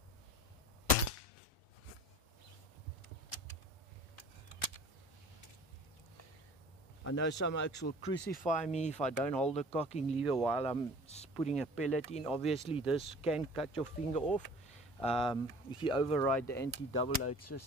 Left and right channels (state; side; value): normal; both; correlation 0.46